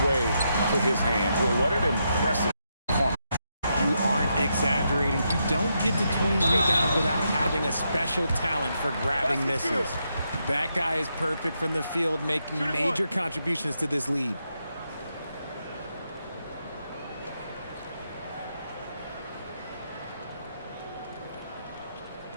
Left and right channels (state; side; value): inverted; both; correlation -0.82